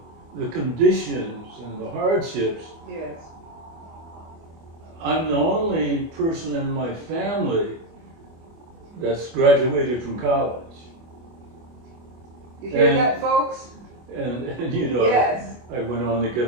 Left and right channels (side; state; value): left; late; 24 ms